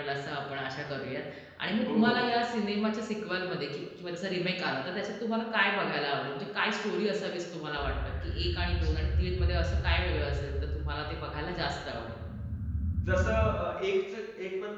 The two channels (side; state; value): both; identical; correlation 1.00